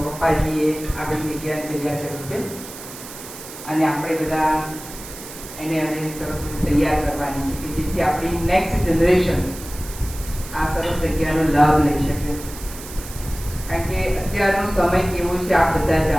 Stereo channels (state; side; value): noise; right; hiss, 14 dB below the sound